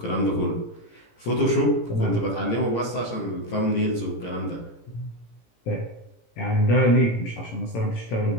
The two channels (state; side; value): late; right; 18 ms